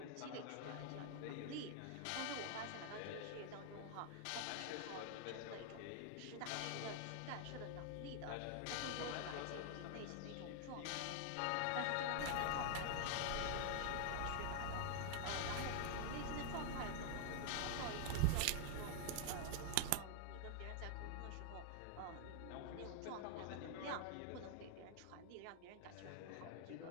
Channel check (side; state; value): both; different; correlation 0.00